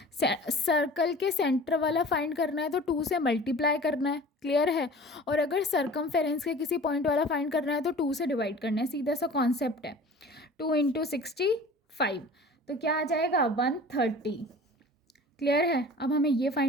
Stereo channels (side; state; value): both; normal; correlation 0.42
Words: Circle के सेंटर वाला फाइंड करना है तो 2 से मल्टीप्लाई करना है, क्लियर है। और अगर सरकमफेरेंस के किसी पॉइंट वाला फाइंड करना है तो 2 से डिवाइड करना है, सीधा सा कॉन्सेप्ट है। 2 इंटू 65 तो क्या आ जाएगा, 130, क्लियर है। अब हमें ये